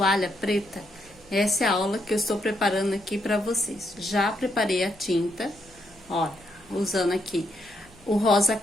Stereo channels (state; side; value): noise; left; hum, 28 dB below the sound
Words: preta? Essa é a aula que eu estou preparando aqui para vocês. Já preparei a tinta, olha, usando aqui o rosa